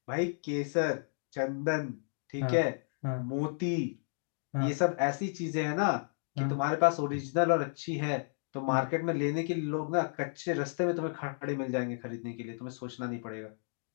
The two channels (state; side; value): silent; right; digital silence